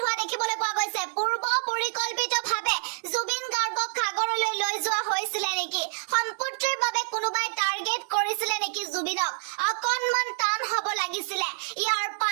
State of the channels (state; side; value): silent; left; digital silence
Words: হোৱা দেখিবলৈ পোৱা গৈছে পূৰ্ব পৰিকল্পিতভাৱে জুবিন গাৰ্গক সাগৰলৈ লৈ যোৱা হৈছিলে নেকি সম্পত্তিৰ বাবে কোনোবাই টাৰ্গেট কৰিছিলে নেকি জুবিনক অকণমান টান হ'ব লাগিছিলে ইয়াৰ